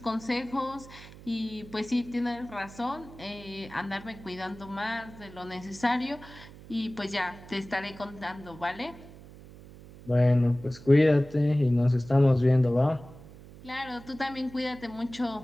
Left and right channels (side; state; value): right; noise; hum, 18 dB below the sound